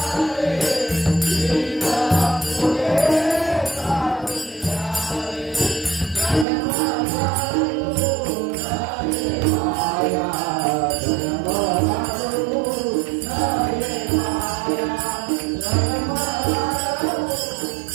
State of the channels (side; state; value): left; drops out; at 6.5 s